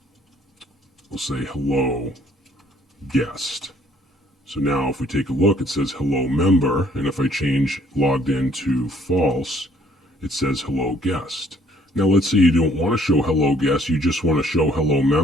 say hello guest. So now if we take a look, it says hello member, and if I change logged in to false, it says hello guest. Now let's say you don't want to show hello guest, you just want to show hello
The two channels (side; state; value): both; normal; correlation 0.61